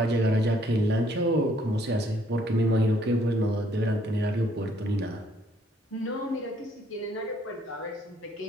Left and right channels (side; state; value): both; normal; correlation 0.66